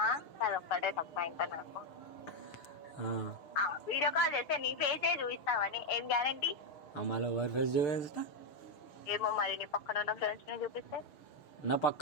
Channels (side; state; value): right; late; 6.5 ms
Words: అదొక్కటే తప్ప ఇంకా నాకు వీడియో కాల్ చేస్తే నీ ఫేసే చూపిస్తావని ఏం గ్యారంటీ? మళ్ళీ ఎవరి ఫేస్ చూపిస్తా? ఏమో మరి నీ పక్కన ఉన్న ఫ్రెండ్స్ ని చూపిస్తే. నా